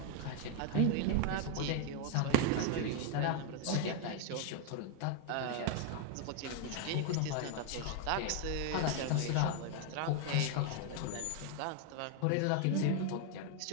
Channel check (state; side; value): different; both; correlation 0.00